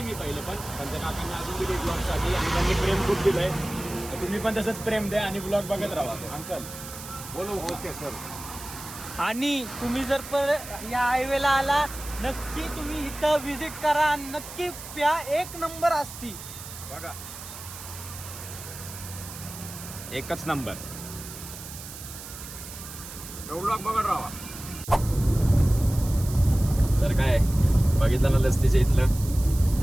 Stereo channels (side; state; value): right; noise; hiss, 12 dB below the sound